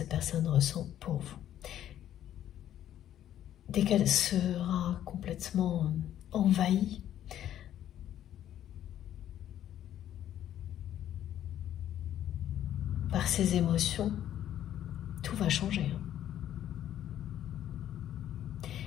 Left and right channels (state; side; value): quieter; right; 11.3 dB